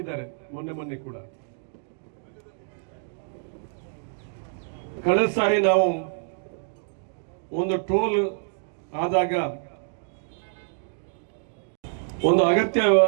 ಮೊನ್ನೆ ಕೂಡ. ಕಳೆದ ಸಾರಿ ನಾವು ಒಂದು ಟೋಲ್ ಆದಾಗ ಒಂದು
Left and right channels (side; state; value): left; silent; digital silence